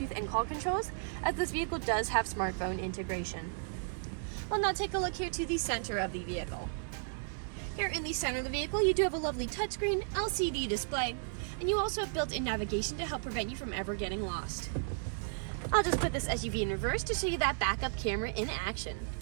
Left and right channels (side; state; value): left; silent; 55 dB below the other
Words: and call controls, as this vehicle does have smartphone integration. We'll now take a look here to the center of the vehicle. Here in the center of the vehicle, you do have a lovely touchscreen LCD display, and you also have built-in navigation to help prevent you from ever getting lost. I'll just put this SUV in reverse to show you that backup camera in action.